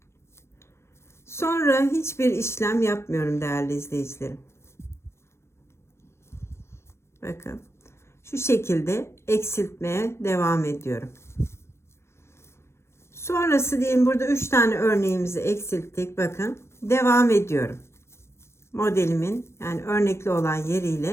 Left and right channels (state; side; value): late; right; 0.13 ms